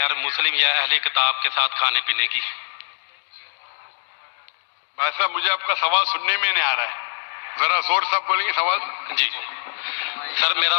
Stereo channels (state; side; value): silent; right; digital silence